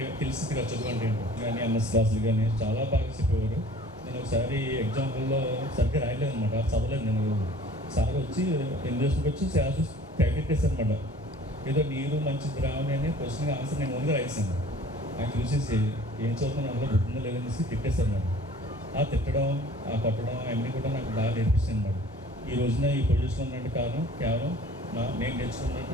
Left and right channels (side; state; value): both; normal; correlation 0.49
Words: తెలిసింది కదా చదువు అంటే ఏంటో. కానీ ఎంఎస్ క్లాసులు కానీ చాలా బాగా చెప్పేవారు. నేను ఒకసారి ఎగ్జాంపుల్లో సరిగ్గా రాయలేదు అనమాట, చదవలేదు. నేను సార్ వచ్చి ఇంగ్లీష్కి వచ్చి ప్రాక్టీస్ చేశాను అనమాట. ఏదో నీరు మంచి ద్రావణి అనే క్వశ్చన్ ఆన్సర్ నేను ఓన్గా రాయిస్తాను. ఆయన చూసేసి ఏం చదువుతున్నా అందులో గుర్తుందో లేదనేసి తిట్టేశారు అన్నమాట. ఆ తిట్టడం, ఆ కొట్టడం అన్నీ కూడా నాకు బాగా నేర్పిస్తుంది అన్నమాట. ఈ రోజున ఈ పొజిషన్ ఉన్నట్టు కారణం కేవలం నేను